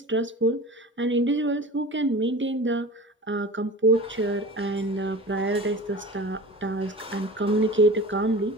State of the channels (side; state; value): both; normal; correlation 0.36